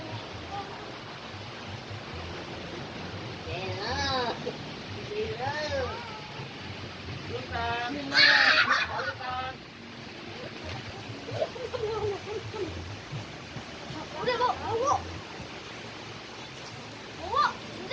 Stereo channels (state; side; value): identical; both; correlation 1.00